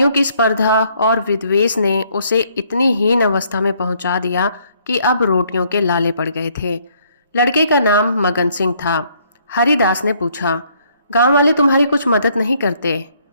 की स्पर्धा और विद्वेष ने उसे इतनी हीन अवस्था में पहुंचा दिया कि अब रोटियों के लाले पड़ गए थे। लड़के का नाम मगन सिंह था। हरिदास ने पूछा, गांव वाले तुम्हारी कुछ मदद नहीं करते?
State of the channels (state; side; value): inverted; both; correlation -0.67